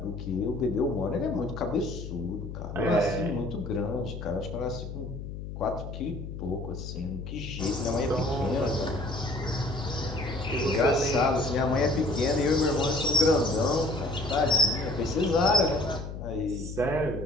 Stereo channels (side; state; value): left; noise; hum, 8 dB below the sound